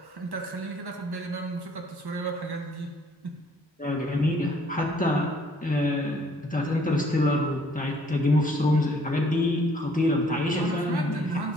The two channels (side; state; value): both; normal; correlation 0.61